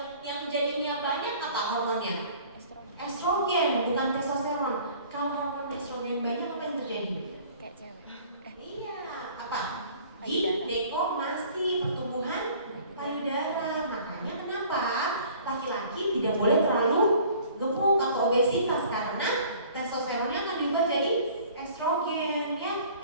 yang jadinya banyak apa hormonnya? Estrogen, bukan testosteron. Kalau hormon estrogen banyak apa yang terjadi? Kayak cewek. Iya, apa? Payudara. Ginekomasti, pertumbuhan payudara. Makanya kenapa laki-laki tidak boleh terlalu gemuk atau obesitas karena testosteronnya akan diubah jadi estrogen, ya.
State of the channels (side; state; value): both; inverted; correlation -0.51